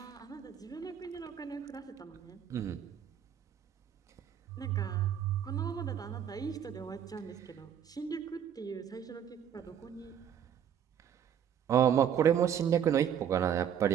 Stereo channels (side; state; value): left; quieter; 8.9 dB